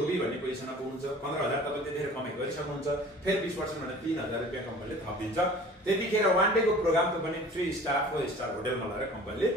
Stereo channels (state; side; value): normal; both; correlation 0.46